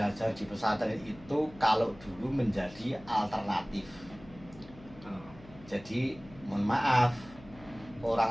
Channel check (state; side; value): noise; left; hum, 20 dB below the sound